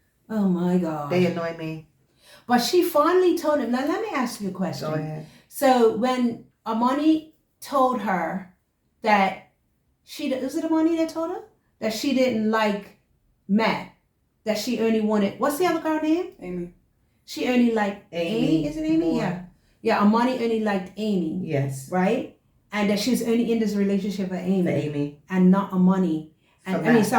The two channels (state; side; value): identical; both; correlation 1.00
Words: Oh my God. They annoy me. But she finally told him. Now let me ask you a question. Go ahead. So when Armani told her that was it Armani that told her that she didn't like Matt, that she only wanted, what's the other girl name? Amy. She only liked Amy. Is it Amy? More. Yeah. Yeah, Armani only liked Amy. Yes. Right? And that she was only in this relationship for Amy. For Amy. And not Armani. And